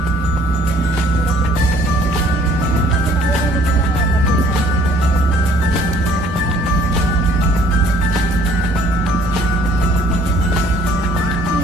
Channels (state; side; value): normal; both; correlation 0.58